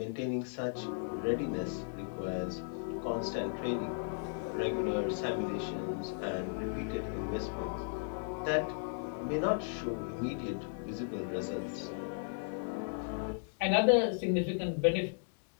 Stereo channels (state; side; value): silent; right; digital silence